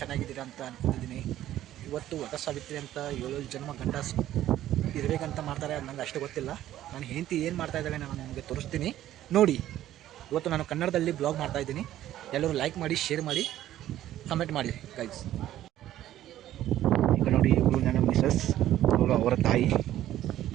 ಅಂತ ಅನ್ಕೊಂಡಿದ್ದೀನಿ. ಇವತ್ತು ವಟ ಸಾವಿತ್ರಿ ಅಂತ 7 ಜನ್ಮ ಗಂಡ ಇರಬೇಕಂತ ಮಾಡ್ತಾರೆ. ಅದು ನಂಗೆ ಅಷ್ಟು ಗೊತ್ತಿಲ್ಲ. ನಾನು ಹೆಂಡತಿ ಏನು ಮಾಡ್ತಾ ಇದ್ದಾಳೆ ನಾನು ನಿಮಗೆ ತೋರಿಸ್ತೀನಿ ನೋಡಿ. ಇವತ್ತು ನಾನು ಕನ್ನಡದಲ್ಲಿ ಬ್ಲಾಗ್ ಮಾಡ್ತಾ ಇದ್ದೀನಿ. ಎಲ್ಲರೂ ಲೈಕ್ ಮಾಡಿ, ಶೇರ್ ಮಾಡಿ, ಕಮೆಂಟ್ ಮಾಡಿ ಗೈಸ್. ಈಗ ನೋಡಿ, ಇವಳು ನನ್ನ ಮಿಸಸ್, ಅವಳು ಅವರ ತಾಯಿ.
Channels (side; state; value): left; quieter; 13.0 dB